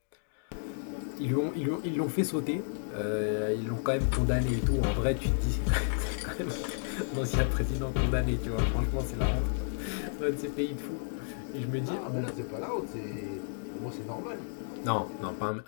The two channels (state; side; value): silent; right; digital silence